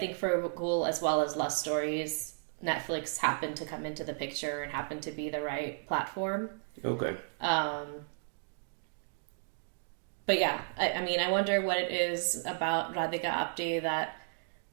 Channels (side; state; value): left; silent; digital silence